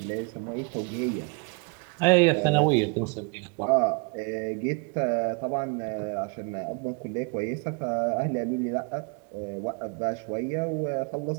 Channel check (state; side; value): quieter; left; 34.6 dB